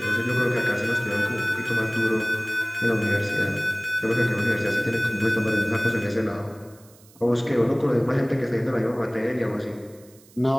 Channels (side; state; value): right; noise; hiss, 27 dB below the sound